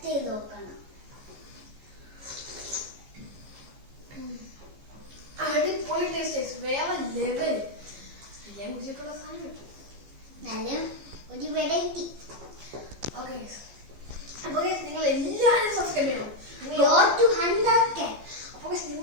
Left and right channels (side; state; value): left; late; 15 ms